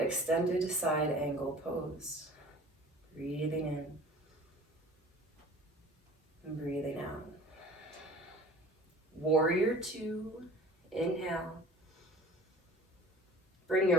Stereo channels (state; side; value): normal; both; correlation 0.45